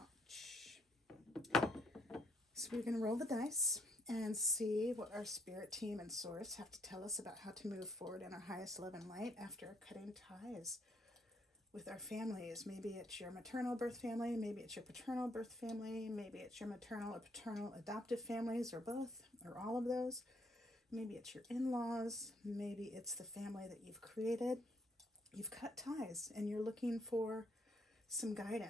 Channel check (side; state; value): both; normal; correlation 0.68